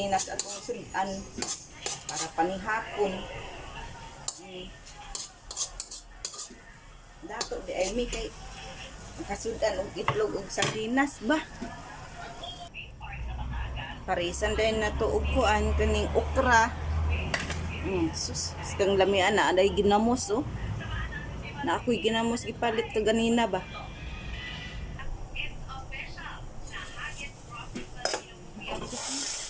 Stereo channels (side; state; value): both; identical; correlation 1.00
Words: atong sudan para panihapon. Dato di ay mi kay makasudan og itlog og sardinas ba. Parisan din na to og kuan kaning okra. Sus, kang lamian na aday ginamos oh. Na ako'y ginamos gipalit to ganina ba.